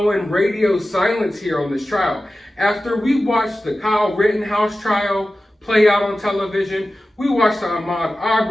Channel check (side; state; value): both; normal; correlation 0.95